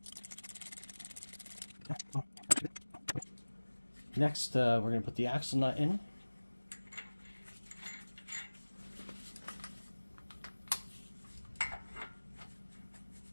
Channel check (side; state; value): both; inverted; correlation -1.00